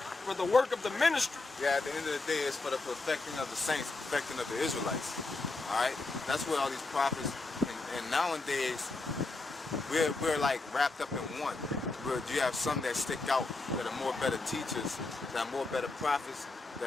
for the work of the ministry. Yeah, at the end of the day, it's for the perfecting of the saints, perfecting of the Israelites. All right, that's what all these prophets and nowadays we're like wrapped up in one. Where you have some that stick out that are more better teachers, that are more better prophets,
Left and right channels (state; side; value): quieter; right; 3.4 dB